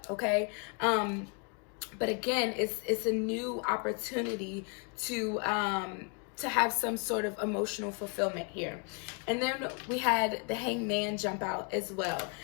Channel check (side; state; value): right; quieter; 37.4 dB